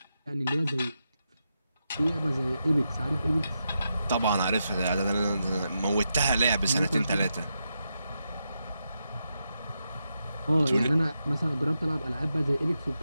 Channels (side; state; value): both; inverted; correlation -0.86